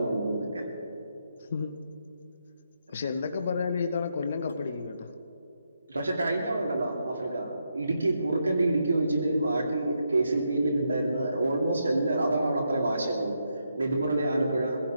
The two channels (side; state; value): both; inverted; correlation -0.81